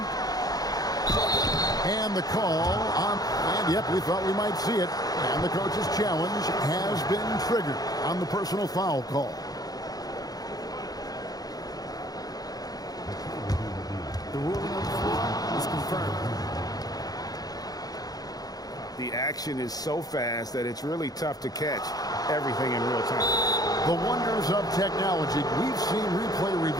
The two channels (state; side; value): late; right; 0.18 ms